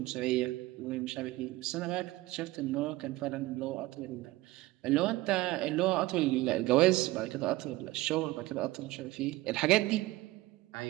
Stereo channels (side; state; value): left; quieter; 18.6 dB